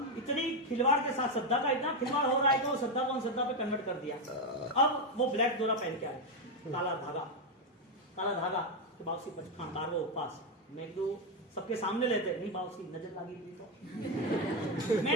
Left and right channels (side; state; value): both; normal; correlation 0.07